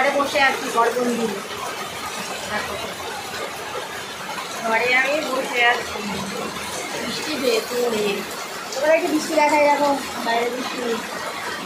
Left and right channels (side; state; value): both; identical; correlation 1.00